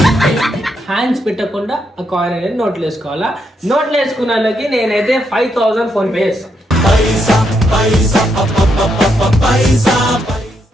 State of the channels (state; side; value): normal; both; correlation 0.79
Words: హ్యాండ్స్ పెట్టకుండా ఆ కాయిన్ అనేది నోట్లు వేసుకోవాలా. నోట్లు వేసుకున్న వాళ్ళకి నేనైతే 5000 ఫోన్ పే చేస్తాను.